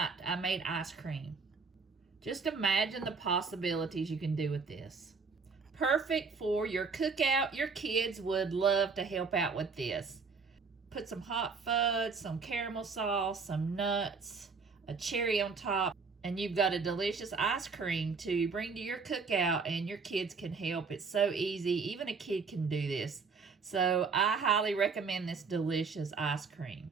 I made ice cream. Just imagine the possibilities you can do with this. Perfect for your cookout. Your kids would love to help out with this. Put some hot fudge, some caramel sauce, some nuts, a cherry on top, and you've got a delicious ice cream to bring to your cookout, and your kids can help. It's so easy. Even a kid can do this. So I highly recommend this delicious ice cream.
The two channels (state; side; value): quieter; left; 4.8 dB